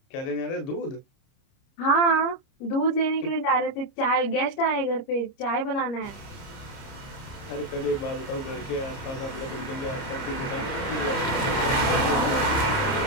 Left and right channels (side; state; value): right; late; 30 ms